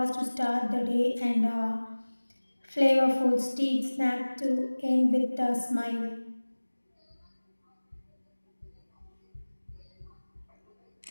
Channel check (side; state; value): both; inverted; correlation -1.00